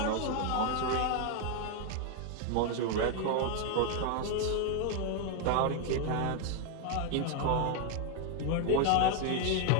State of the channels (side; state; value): both; different; correlation 0.00